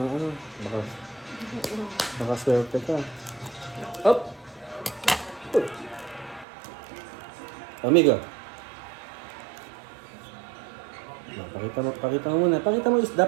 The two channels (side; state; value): left; drops out; at 6.5 s